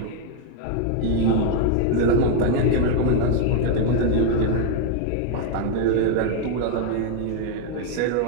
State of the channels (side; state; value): both; different; correlation 0.00